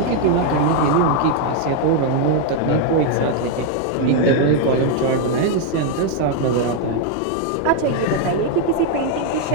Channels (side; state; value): both; different; correlation 0.00